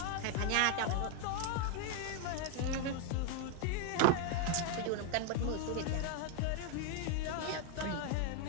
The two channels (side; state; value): both; different; correlation 0.00